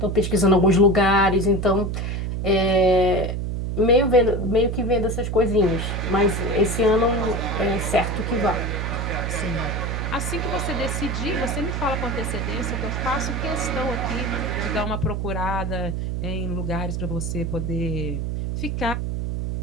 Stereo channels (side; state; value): right; noise; hum, 2 dB below the sound